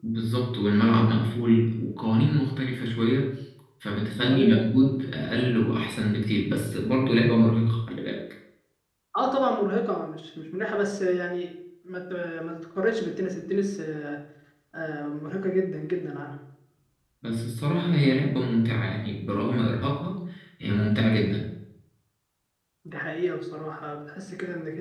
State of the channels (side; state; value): both; identical; correlation 1.00